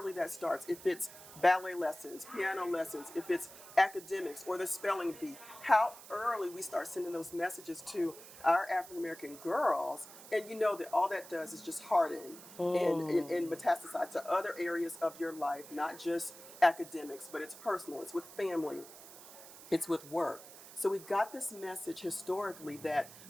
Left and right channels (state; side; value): noise; right; hiss, 17 dB below the sound